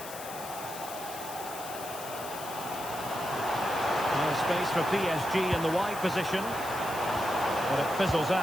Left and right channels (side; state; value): left; noise; hiss, 12 dB below the sound